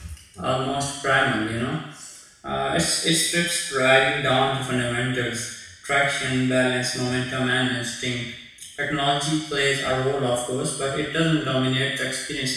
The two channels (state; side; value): identical; both; correlation 1.00